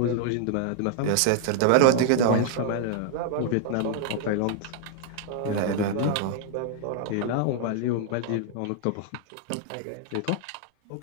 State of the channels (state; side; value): different; both; correlation -0.01